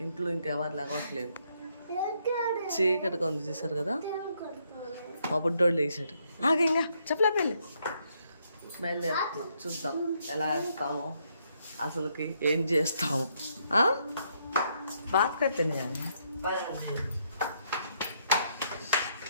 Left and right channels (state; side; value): inverted; both; correlation -0.74